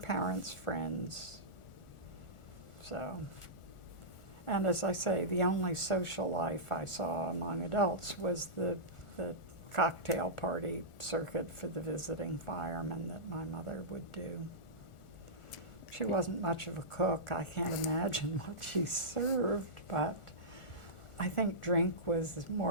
friends. So, and as I say, the only social life I saw among adults was the cocktail party circuit for the visiting firemen that my mother would do. She wasn't much of a cook. I can't imagine what she served, but I think drink was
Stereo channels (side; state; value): right; late; 1.4 ms